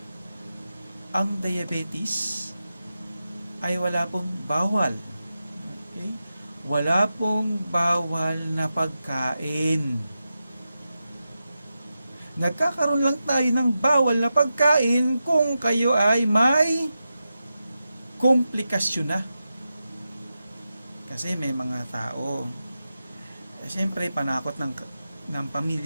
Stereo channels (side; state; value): both; inverted; correlation -0.90